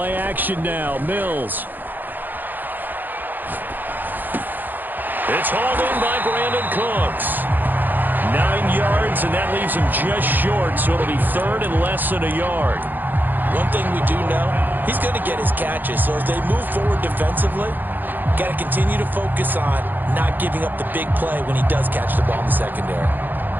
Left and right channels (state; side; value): late; left; 0.088 ms